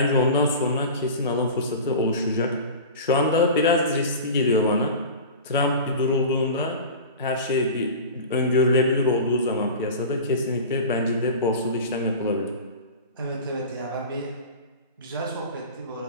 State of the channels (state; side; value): inverted; both; correlation -0.33